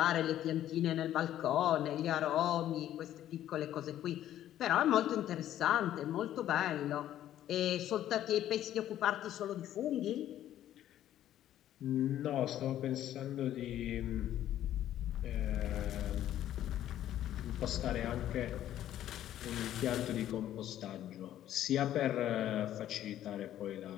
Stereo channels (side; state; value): right; quieter; 12.1 dB